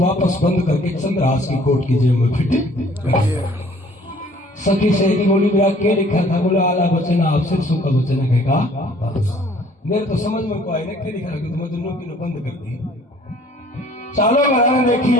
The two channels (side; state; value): both; normal; correlation 0.55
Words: बंद करके चंद्रहास की कोट की जेब में फिट कर दिया। सखी सहेली बोली मेरा क्या लिखा था? बोला आला वचन आप सिरसों का वचन कहेगा। मेरे तो समझ में को आए ना क्या लिखा कि तुम्हें दोनों की बंद कर दी। चालो बनाने देखी